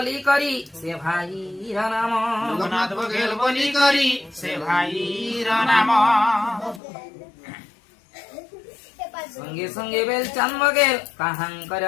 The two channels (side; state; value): right; drops out; at 6.8 s